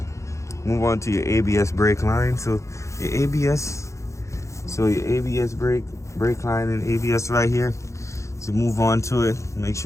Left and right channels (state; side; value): late; right; 0.15 ms